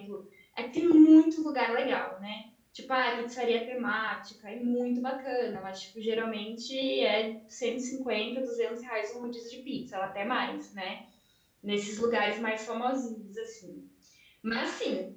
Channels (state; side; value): identical; both; correlation 1.00